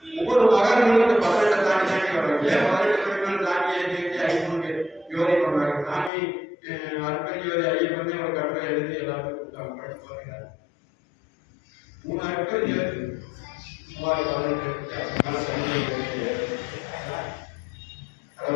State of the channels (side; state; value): right; drops out; at 6.1 s